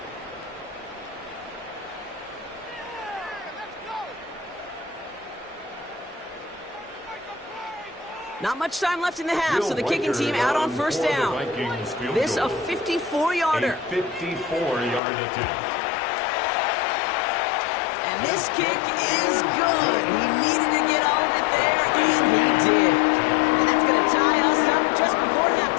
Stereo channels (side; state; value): right; drops out; at 15.0 s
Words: Not much time left in the half, so the kicking team out on first down. This a 54-yarder. 54-yard attempt. And this kick is good. He needed to get all of it there, and he did. And that's going to tie us up just before